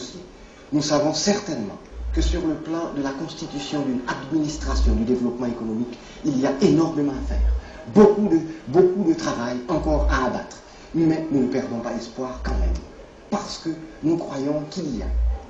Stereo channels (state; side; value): identical; both; correlation 1.00